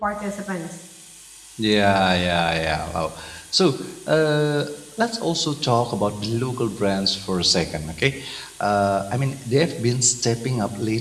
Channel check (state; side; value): identical; both; correlation 1.00